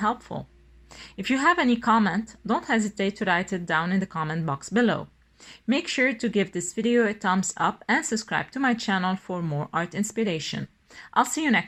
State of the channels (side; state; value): both; identical; correlation 1.00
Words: If you have any comment, don't hesitate to write it down in the comment box below. Make sure to give this video a thumbs up and subscribe to my channel for more art inspiration. I'll see you